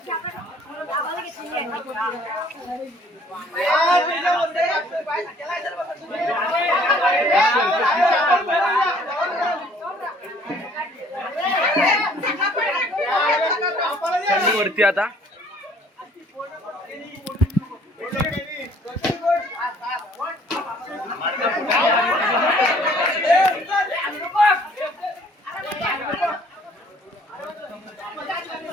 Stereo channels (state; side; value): normal; both; correlation 0.58